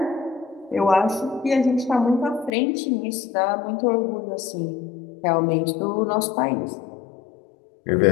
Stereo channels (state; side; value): drops out; right; at 2.5 s